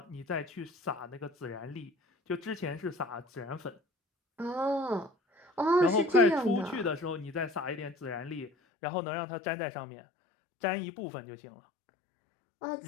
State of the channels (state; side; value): drops out; right; at 8.5 s